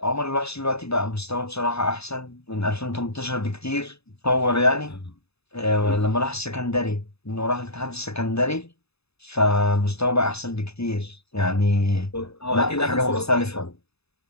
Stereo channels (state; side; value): late; right; 0.79 ms